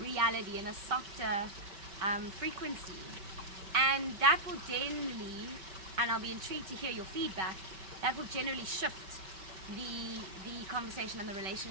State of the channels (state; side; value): late; left; 5.2 ms